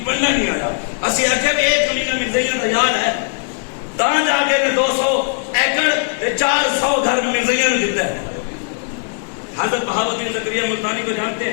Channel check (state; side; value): silent; right; 67 dB below the other